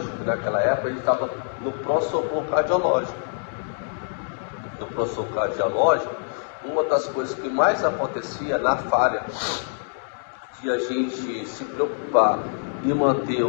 que naquela época a gente estava no pronto-socorro cardiológico. No pronto-socorro cardiológico, uma das coisas que mais acontecia na falha de a gente se preocupar em manter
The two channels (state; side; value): silent; right; digital silence